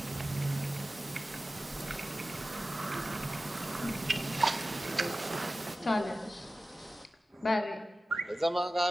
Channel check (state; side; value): normal; both; correlation 0.96